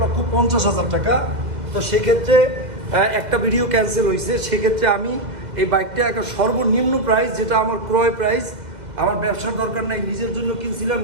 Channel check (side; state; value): left; late; 2.1 ms